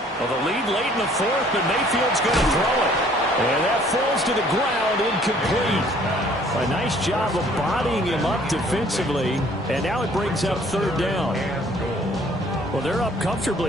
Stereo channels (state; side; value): normal; both; correlation 0.58